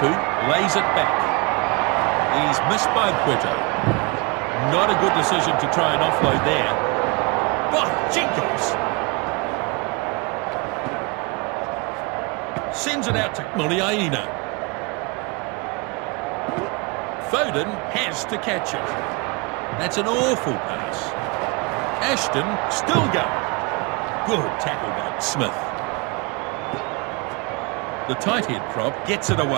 lays it back. He's missed by Puerto. Not a good decision to try and offload there. By Jenkins! Sends it out to Muliaina. Foden has to catch it. That's an awful pass. Ashton still going. Good tackle by Smith. The tight head prop gets it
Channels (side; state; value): left; quieter; 29.1 dB